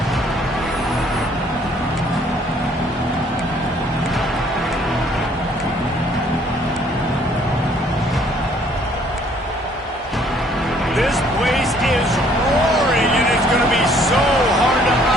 This place is roaring, and it's going to be so hard to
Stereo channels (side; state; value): both; normal; correlation 0.61